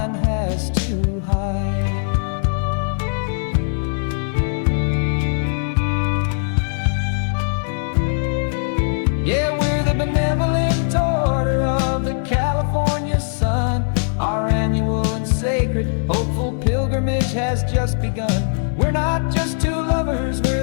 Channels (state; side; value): silent; right; digital silence